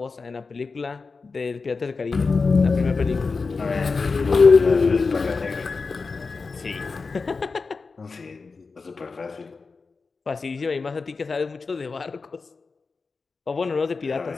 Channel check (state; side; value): quieter; right; 4.4 dB